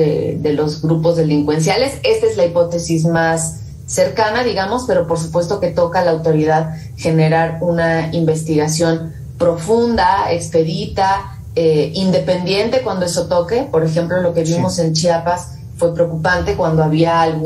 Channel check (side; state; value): both; identical; correlation 1.00